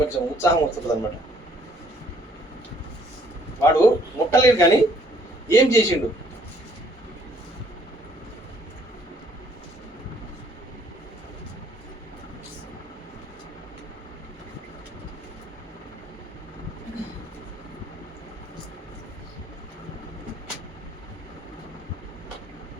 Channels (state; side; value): normal; both; correlation 0.63